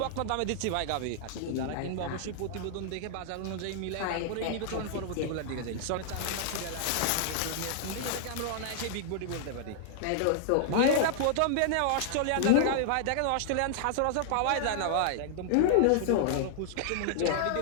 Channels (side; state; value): both; different; correlation -0.01